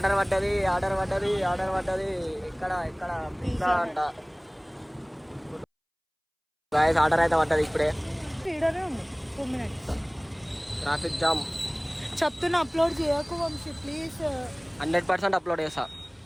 పడ్డది. ఇక్కడ పిజ్జా అంట. గాయస్ ఆర్డర్ అయితే పడ్డది ఇప్పుడే. వీడియోనే ఉంది 2 minutes. Traffic jam. చెప్తున్నా అప్లోడ్ చేయకు వంశీ ప్లీజ్. 100% అప్లోడ్ చేస్తా.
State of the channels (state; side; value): identical; both; correlation 1.00